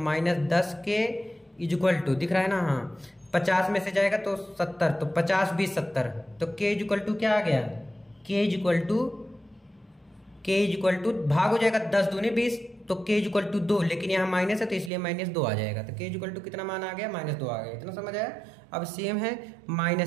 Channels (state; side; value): drops out; left; at 14.9 s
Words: के इक्वल टू, दिख रहा है ना? हाँ, 50 में से जाएगा तो 70, तो 50 20 70, तो के इक्वल टू क्या आ गया? के इक्वल टू भाग हो जाएगा, 10 दूनी 20, तो के इक्वल टू 2, लेकिन यहाँ माइनस है तो इसलिए -2 आ जाएगा, तो के इक्वल टू कितना मान आ गया? -2 आ गया। इतना समझ आया? अब सेम है